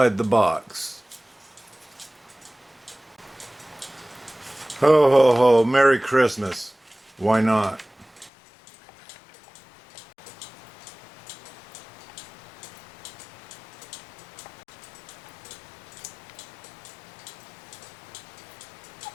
the box. Ho ho ho, Merry Christmas. Why not?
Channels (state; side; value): drops out; right; at 8.3 s